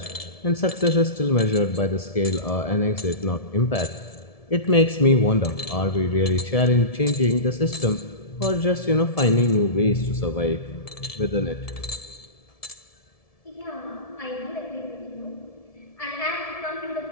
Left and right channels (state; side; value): late; right; 1.7 ms